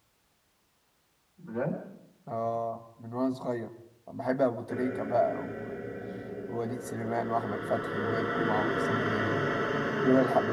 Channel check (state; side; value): identical; both; correlation 1.00